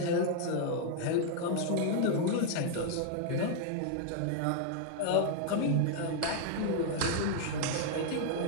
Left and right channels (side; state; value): both; different; correlation -0.01